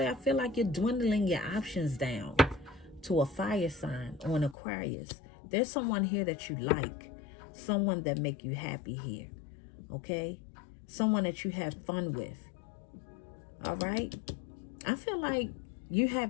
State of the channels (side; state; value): right; drops out; at 4.5 s